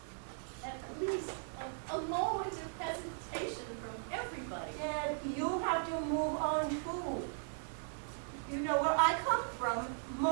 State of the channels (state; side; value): silent; left; digital silence